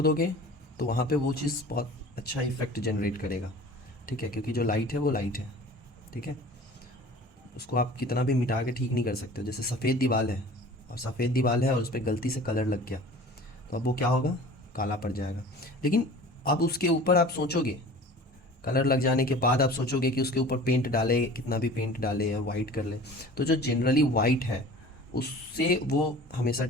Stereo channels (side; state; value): both; normal; correlation 0.43